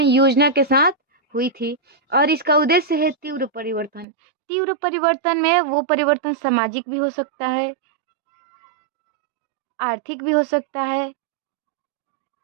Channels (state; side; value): drops out; left; at 4.0 s